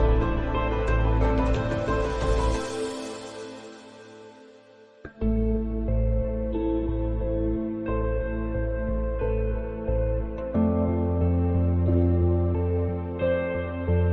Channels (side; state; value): both; identical; correlation 1.00